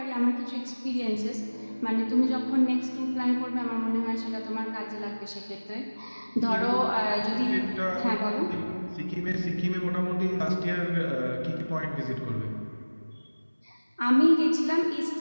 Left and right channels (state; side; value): inverted; both; correlation -1.00